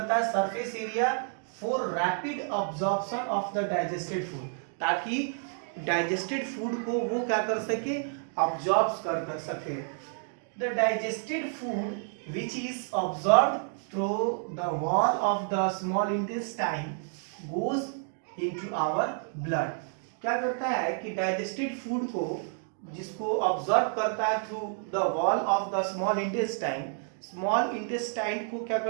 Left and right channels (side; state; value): left; silent; 58 dB below the other